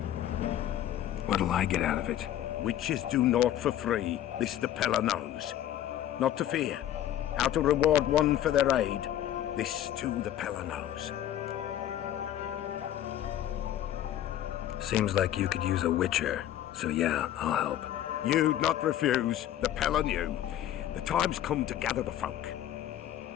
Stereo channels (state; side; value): quieter; right; 11.8 dB